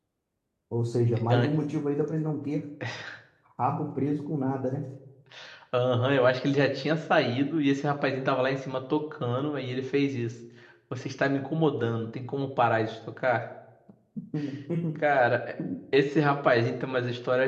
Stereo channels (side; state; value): both; identical; correlation 1.00